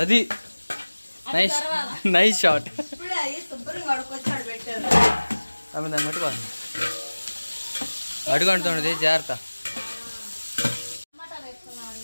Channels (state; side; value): inverted; both; correlation -1.00